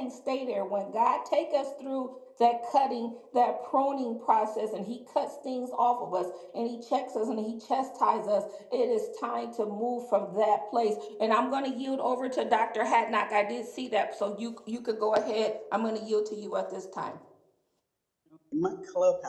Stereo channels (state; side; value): identical; both; correlation 1.00